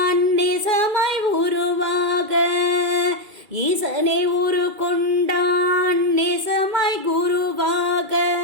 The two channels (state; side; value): late; left; 2.3 ms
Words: நேசமாய் உருவாக, ஈசனே உரு கொண்டான் நேசமாய் குருவாக,